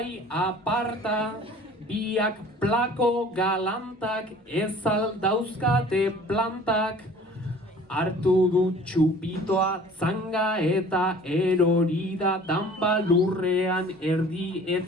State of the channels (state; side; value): normal; both; correlation 0.48